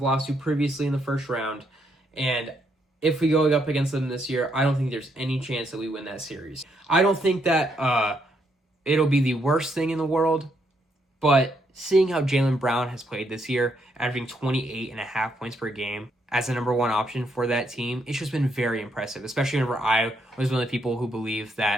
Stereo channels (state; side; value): normal; both; correlation 0.75